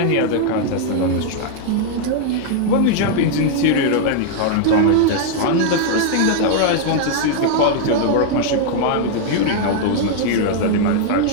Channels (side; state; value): both; different; correlation 0.00